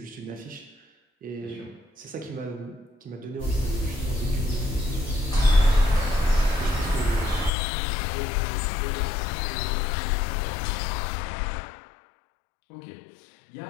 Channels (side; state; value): right; drops out; at 7.5 s